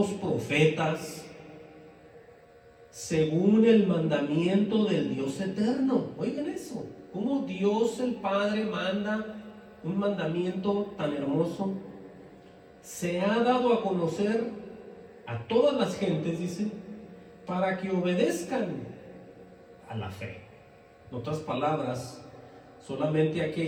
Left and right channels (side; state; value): both; identical; correlation 1.00